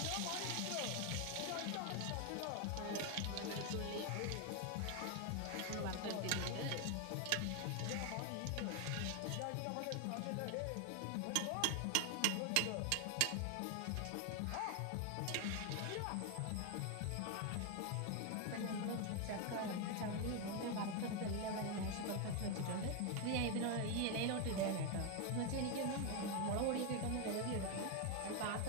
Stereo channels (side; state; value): both; different; correlation 0.01